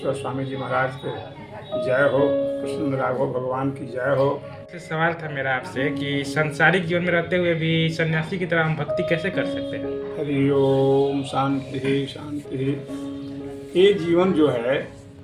स्वामी जी महाराज के जय हो, कृष्ण राघव भगवान की जय हो। सवाल था मेरा आपसे कि सांसारिक जीवन में रहते हुए भी सन्यासी की तरह हम भक्ति कैसे कर सकते हैं। हरि ओम शांति शांति। ये जीवन जो है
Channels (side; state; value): both; identical; correlation 1.00